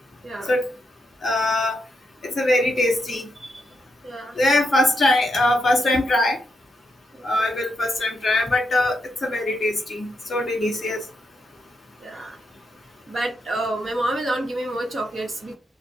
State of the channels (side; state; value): both; normal; correlation 0.82